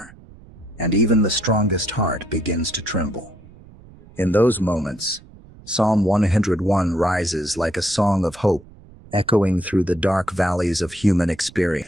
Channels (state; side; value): noise; right; rumble, 22 dB below the sound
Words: and even the strongest heart begins to tremble. In those moments, Psalm 101 rises like a song of hope, echoing through the dark valleys of human